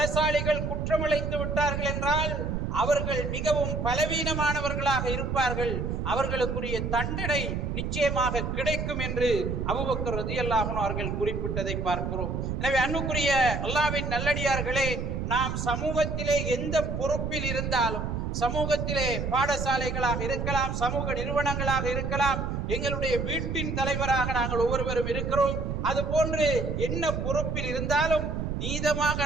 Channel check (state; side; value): noise; right; rumble, 2 dB below the sound